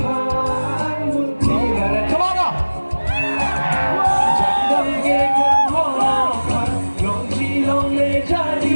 Come on now. Jangan gekan hola, lonji longle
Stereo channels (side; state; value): both; inverted; correlation -1.00